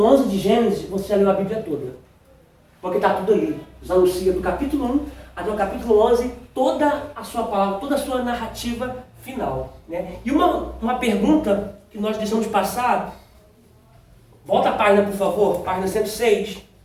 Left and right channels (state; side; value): identical; both; correlation 1.00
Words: 11 de Gênesis, você já leu a Bíblia toda. Porque está tudo ali. Deus anuncia do capítulo 1 até o capítulo 11 toda a sua palavra, toda a sua narrativa final, né? E uma pergunta que nós deixamos passar, volta a página, por favor, página 106,